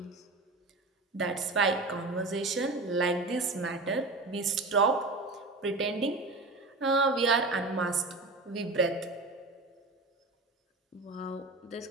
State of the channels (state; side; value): quieter; left; 3.3 dB